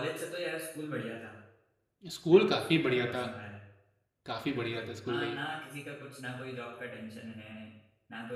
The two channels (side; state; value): both; identical; correlation 1.00